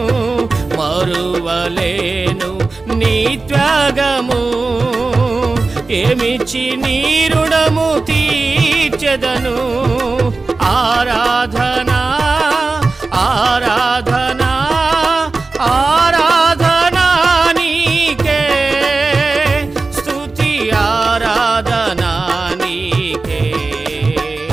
మరువలేను నీ త్యాగము, ఏమిచ్చి నీ రుణము తీర్చెదను. ఆరాధనా ఆరాధనా ఆరాధనా నీకే, స్తుతి ఆరాధనా నీకే.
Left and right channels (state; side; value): quieter; left; 3.7 dB